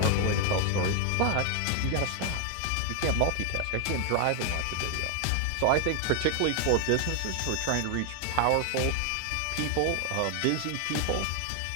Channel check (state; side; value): different; both; correlation 0.00